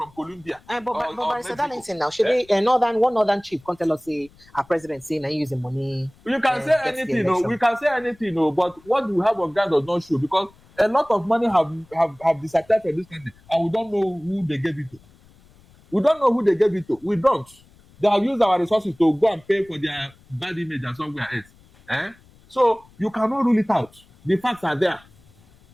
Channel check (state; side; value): noise; left; rumble, 28 dB below the sound